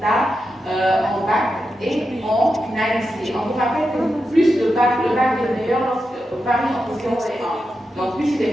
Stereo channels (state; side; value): normal; both; correlation 0.88